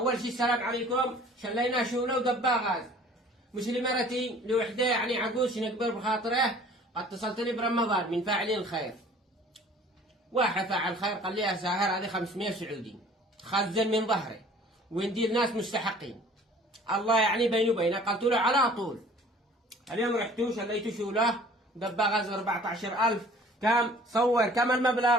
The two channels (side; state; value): both; normal; correlation 0.50